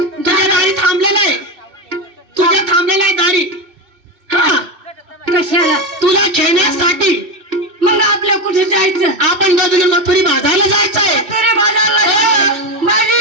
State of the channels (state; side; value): late; left; 3.3 ms